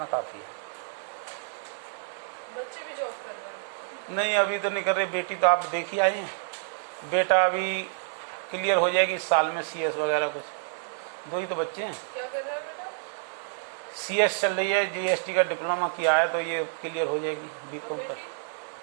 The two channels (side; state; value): left; silent; digital silence